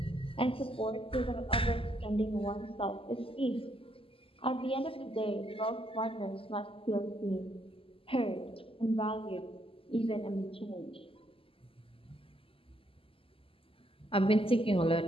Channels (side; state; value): right; late; 0.26 ms